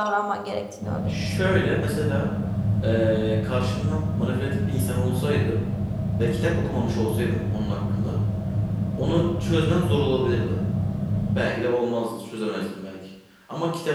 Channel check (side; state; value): both; identical; correlation 1.00